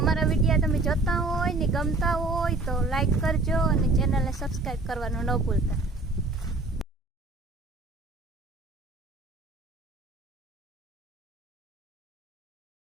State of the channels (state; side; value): quieter; left; 3.1 dB